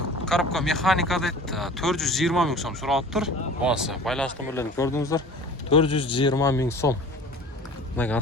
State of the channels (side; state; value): both; normal; correlation 0.42